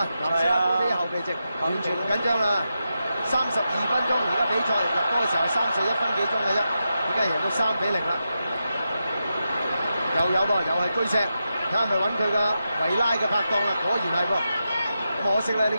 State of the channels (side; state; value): both; inverted; correlation -0.87